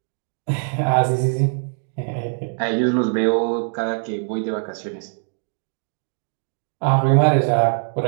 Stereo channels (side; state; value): left; silent; 64 dB below the other